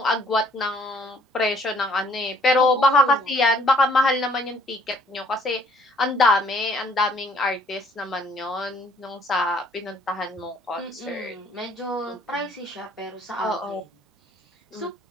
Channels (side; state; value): both; normal; correlation 0.62